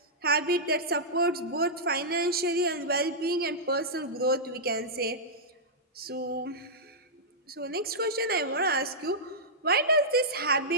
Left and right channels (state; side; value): normal; both; correlation -0.11